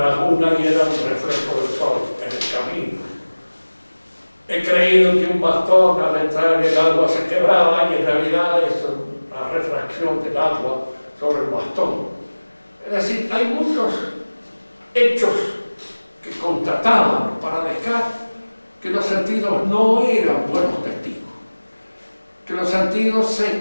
laguna y era un reflejo del sol en el camino. He creído que un bastón al entrar en el agua se quebraba y en realidad es una refracción del agua sobre el bastón. Es decir, hay muchos hechos que constataban para Descartes que los sentidos no eran buenos testigos, que los sentidos se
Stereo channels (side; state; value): both; inverted; correlation -1.00